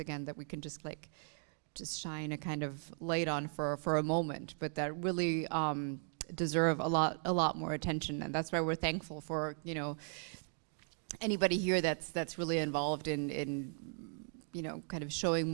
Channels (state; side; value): silent; left; 53 dB below the other